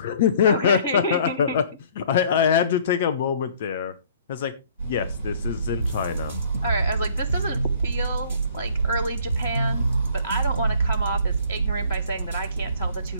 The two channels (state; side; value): inverted; both; correlation -0.57